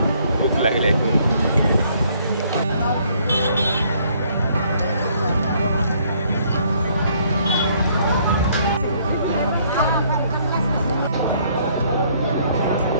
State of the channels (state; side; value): inverted; both; correlation -0.65